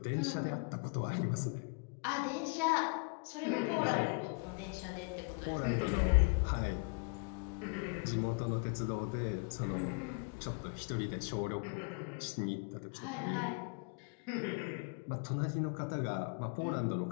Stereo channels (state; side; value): quieter; right; 34.6 dB